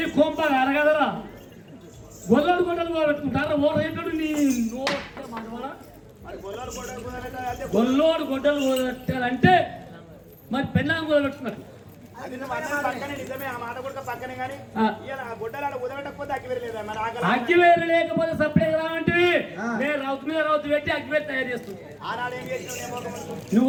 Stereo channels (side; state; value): both; identical; correlation 1.00